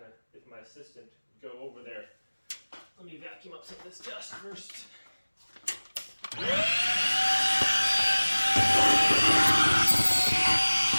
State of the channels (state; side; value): inverted; both; correlation -1.00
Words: of, if my assistant would go over there. Let me vacuum up some of this dust first.